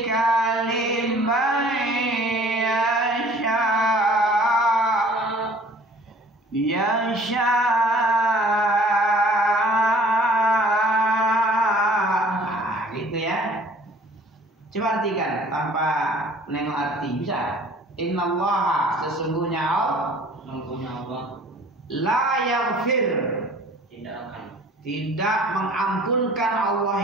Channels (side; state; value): both; normal; correlation 0.51